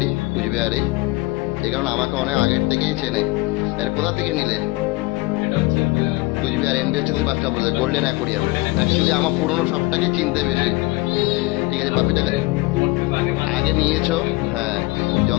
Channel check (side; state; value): right; quieter; 22.2 dB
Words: কুচবিহারেই। এই কারণে আমাকে অনেক আগের থেকেই চেনে। এর কোথা থেকে নিলে? কুচবিহার এনবিএসটিসি বাসটা বলছে, গোল্ডেন অ্যাকোরিয়াম। অ্যাকচুয়ালি আমার পুরোনো সবটাকে চিনতে বেশি। ঠিক আছে, পাপ্পিটাকে আগে নিয়েছো, হ্যাঁ,